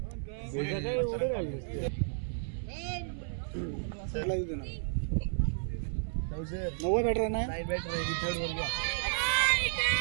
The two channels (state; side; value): silent; left; 56 dB below the other